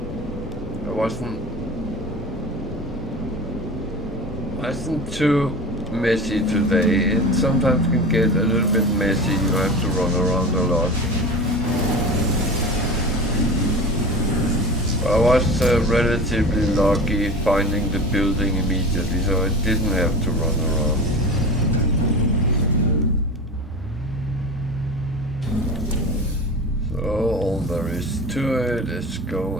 wasn't too messy today. It sometimes can get a little bit messy. You have to run around a lot. I was relatively lucky finding the building immediately, so I didn't have to run around. All there is to it is go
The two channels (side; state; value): both; normal; correlation 0.32